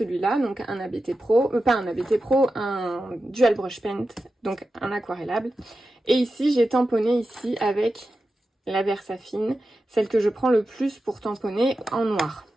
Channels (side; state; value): both; normal; correlation 0.91